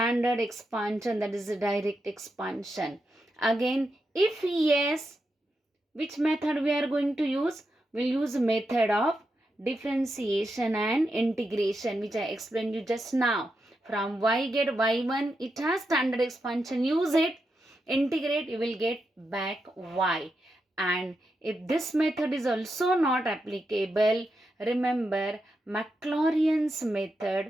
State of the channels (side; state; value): both; normal; correlation 0.86